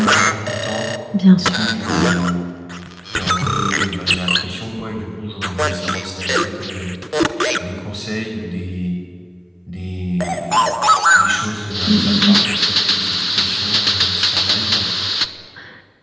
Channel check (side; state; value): both; identical; correlation 1.00